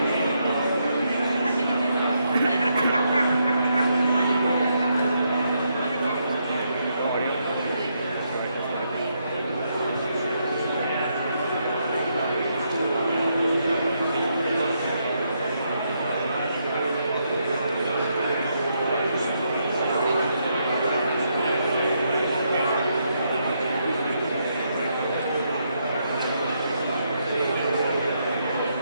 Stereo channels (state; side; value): inverted; both; correlation -0.78